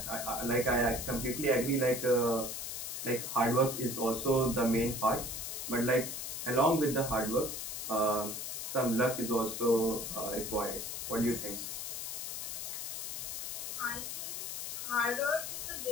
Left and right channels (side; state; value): left; noise; hiss, 5 dB below the sound